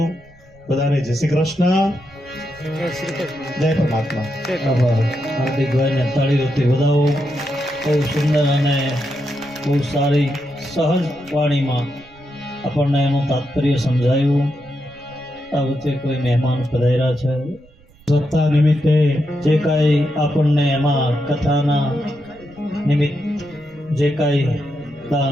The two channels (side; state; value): right; noise; rumble, 27 dB below the sound